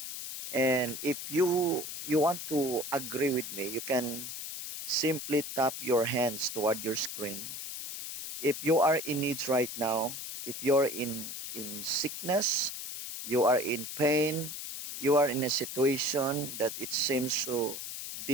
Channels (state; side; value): noise; left; hiss, 7 dB below the sound